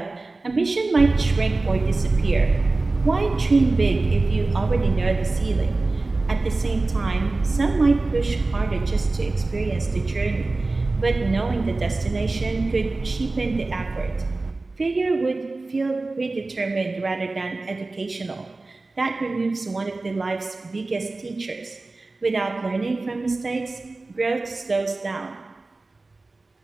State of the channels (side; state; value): left; quieter; 3.3 dB